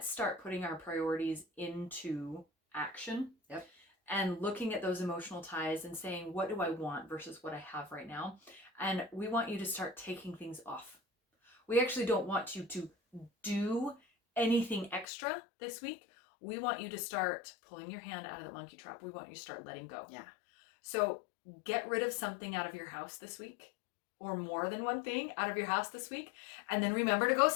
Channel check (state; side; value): drops out; right; at 15.1 s